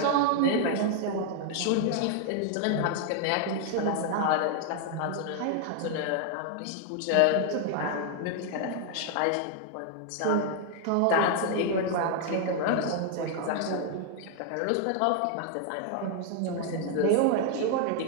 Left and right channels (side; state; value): both; different; correlation 0.00